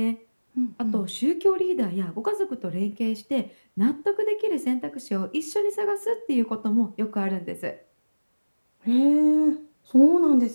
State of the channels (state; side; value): inverted; both; correlation -1.00